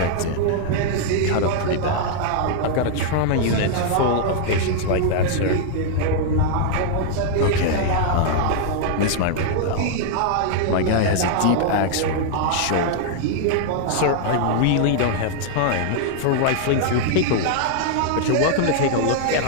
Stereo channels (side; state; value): both; different; correlation -0.01